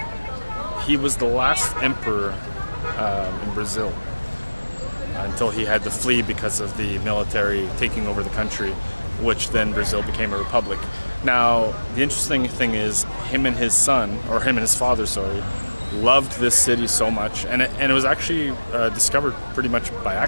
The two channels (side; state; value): both; inverted; correlation -1.00